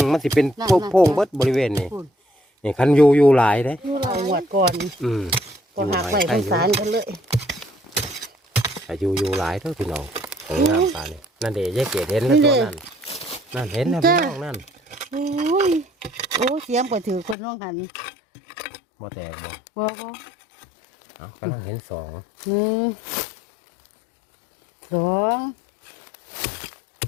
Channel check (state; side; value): drops out; right; at 17.4 s